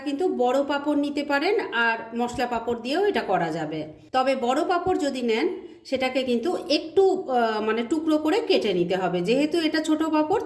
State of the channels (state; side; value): identical; both; correlation 1.00